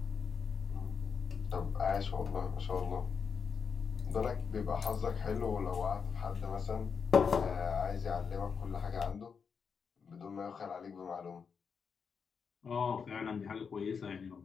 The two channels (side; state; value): right; quieter; 6.1 dB